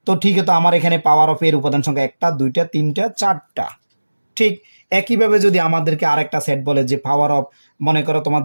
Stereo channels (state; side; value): inverted; both; correlation -1.00